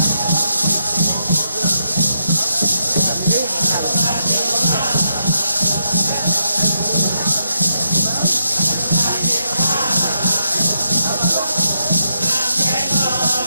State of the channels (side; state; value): both; inverted; correlation -0.81